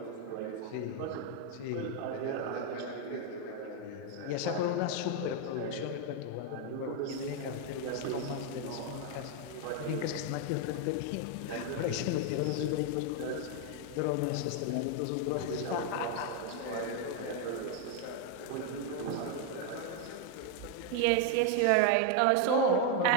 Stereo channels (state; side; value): different; both; correlation 0.01